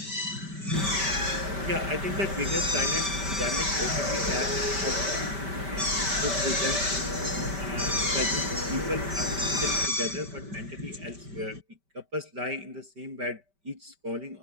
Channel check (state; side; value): late; left; 5.1 ms